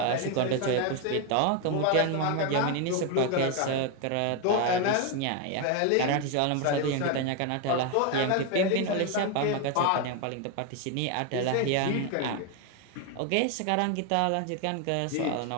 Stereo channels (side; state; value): both; different; correlation 0.01